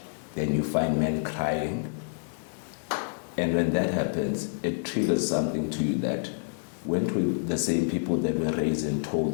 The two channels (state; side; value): silent; right; digital silence